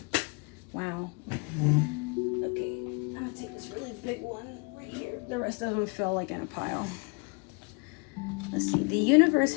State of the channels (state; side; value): quieter; right; 31.1 dB